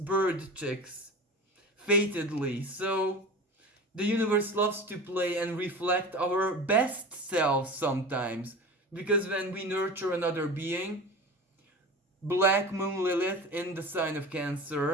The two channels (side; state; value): both; normal; correlation 0.33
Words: chicks, fatedly. So the universe loves to play and reflect our best selves sometimes, because when we nurture another being, Black Moon Lilith in the sign of